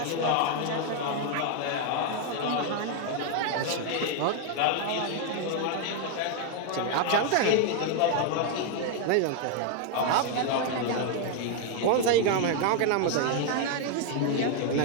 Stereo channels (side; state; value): both; different; correlation 0.00